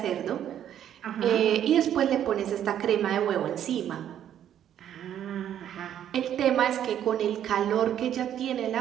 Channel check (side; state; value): left; quieter; 10.3 dB